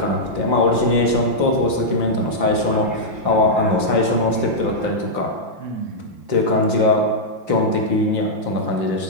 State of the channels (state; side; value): late; left; 5.7 ms